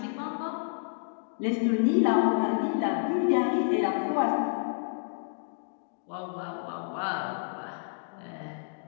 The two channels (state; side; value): silent; right; digital silence